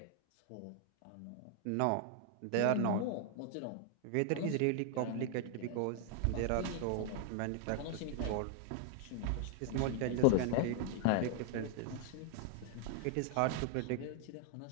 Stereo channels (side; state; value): both; different; correlation 0.00